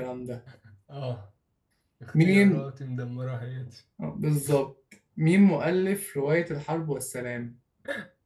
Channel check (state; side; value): identical; both; correlation 1.00